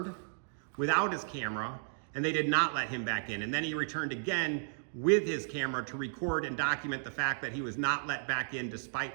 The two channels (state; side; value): silent; left; digital silence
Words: without his camera, and they did not let him back in. And then he returned again with his camera to record and document the fact that he was not let back in